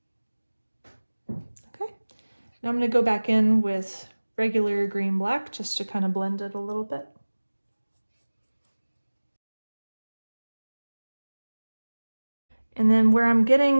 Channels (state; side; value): inverted; both; correlation -1.00